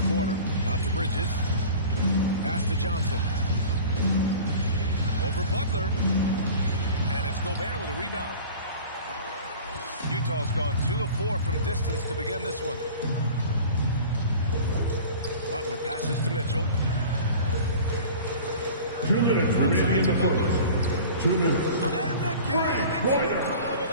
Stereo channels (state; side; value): inverted; both; correlation -0.40